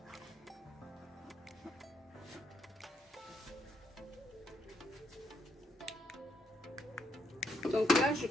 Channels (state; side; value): normal; both; correlation 0.76